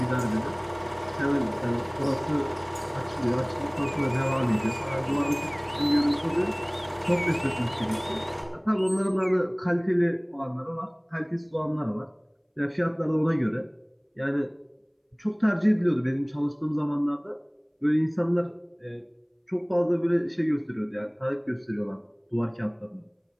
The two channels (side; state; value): both; identical; correlation 1.00